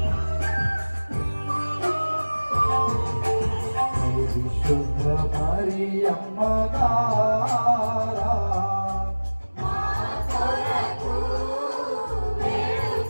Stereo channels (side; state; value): both; inverted; correlation -1.00